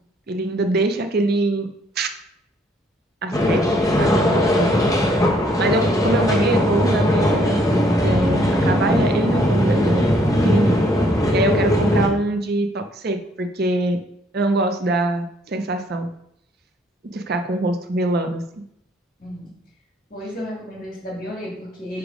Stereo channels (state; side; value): normal; both; correlation 0.66